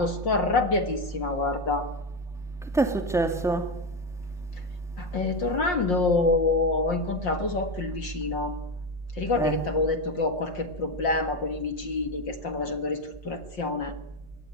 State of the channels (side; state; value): left; noise; hum, 27 dB below the sound